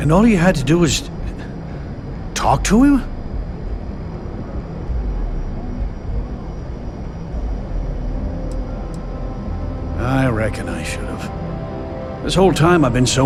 all you had to do was... talk to him? I reckon I should have. This whole time I've been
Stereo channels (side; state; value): both; identical; correlation 1.00